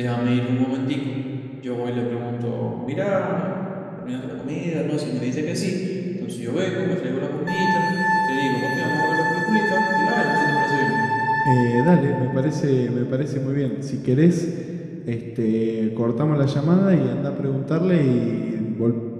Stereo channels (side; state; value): both; identical; correlation 1.00